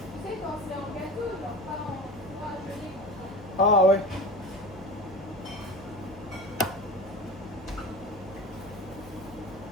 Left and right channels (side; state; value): both; normal; correlation 0.32